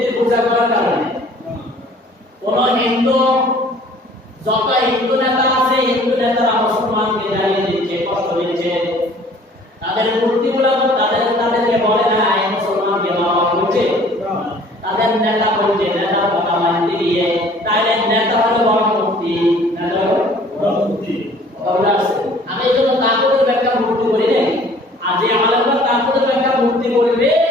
পূজা করার কারণে? কোন হিন্দু, যত হিন্দু নেতা আছে, হিন্দু নেতারা মুসলমানকে জ্বালিয়ে দিচ্ছে, কষ্ট দিচ্ছে। তাদের মূর্তিগুলো তাদেরকে বলে না এই মুসলমানকে মারা করছে, তাদের নেতা বলছে, নেতার কথা মানতে গিয়ে তাহলে নেতা হলো বড় মূর্তি, নেতা হলো বড় মূর্তি। আমি এই জন্য তাকুদের ব্যাখ্যা মূর্তি করি নাই। আর যে আলেমরা তাকুদের ব্যাখ্যা মূর্তি করবে,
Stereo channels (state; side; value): normal; both; correlation 0.53